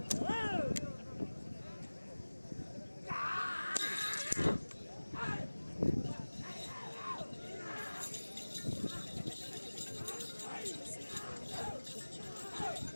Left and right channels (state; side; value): inverted; both; correlation -1.00